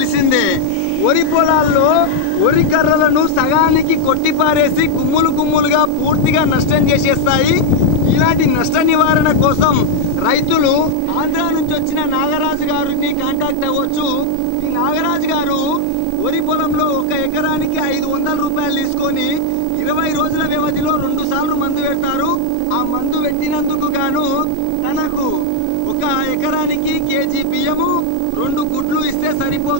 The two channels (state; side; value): different; both; correlation 0.00